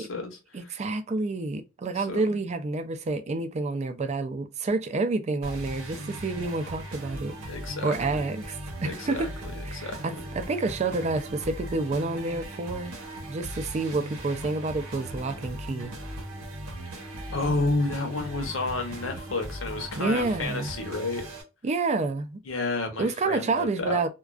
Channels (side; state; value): both; normal; correlation 0.39